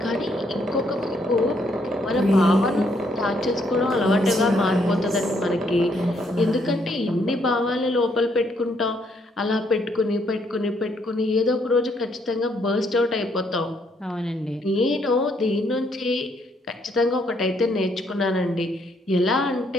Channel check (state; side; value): normal; both; correlation 0.71